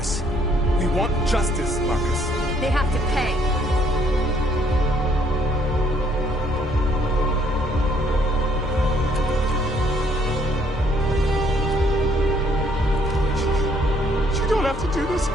We want justice, Marcus. They have to pay. You don't have to do this.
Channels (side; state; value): both; normal; correlation 0.65